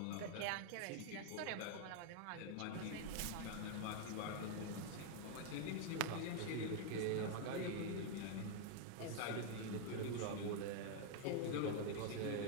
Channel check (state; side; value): different; both; correlation 0.00